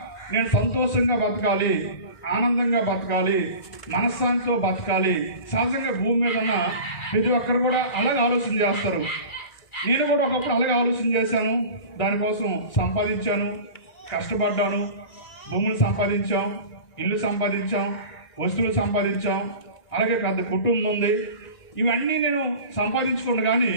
నేను సంతోషంగా బతకాలి, ఆనందంగా బతకాలి, మనశ్శాంతితో బతకాలి. సహజంగా భూమి మీద ఉన్న ప్రతి ఒక్కరు కూడా అలాగే ఆలోచన చేస్తారు. నేను కూడా ఒకప్పుడు అలాగే ఆలోచన చేశాను. దానికోసం సంపాదించాను, కష్టపడ్డాను, భూములు సంపాదించాం, ఇల్లు సంపాదించాం, వస్తువులు సంపాదించాం, అలాగే పెద్ద కుటుంబం ఉంది. ఇవన్నీ నేను సంపాదించుకున్నా కానీ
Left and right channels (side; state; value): right; late; 1.9 ms